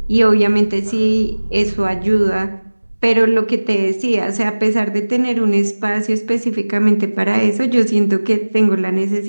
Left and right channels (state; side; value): inverted; both; correlation -1.00